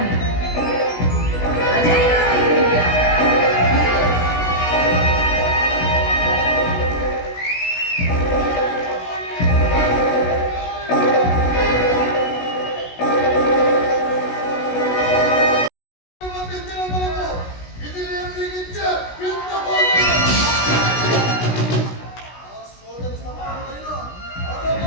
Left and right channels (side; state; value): right; late; 16 ms